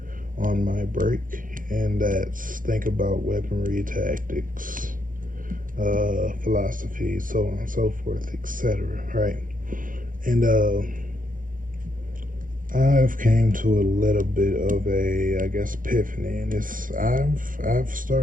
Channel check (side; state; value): left; late; 0.40 ms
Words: on my break, and that's think about weaponry, tactics, philosophy, so on and so forth, etc. Right? And I've came to a little bit of a, I guess, epiphany, and it's I've